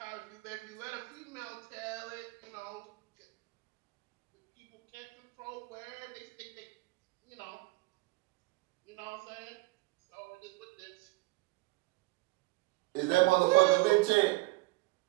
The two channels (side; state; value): left; quieter; 23.8 dB